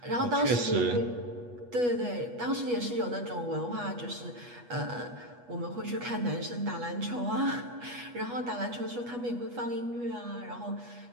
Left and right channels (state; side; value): late; left; 8.2 ms